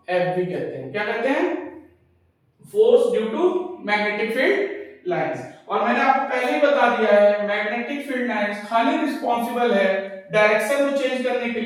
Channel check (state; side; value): identical; both; correlation 1.00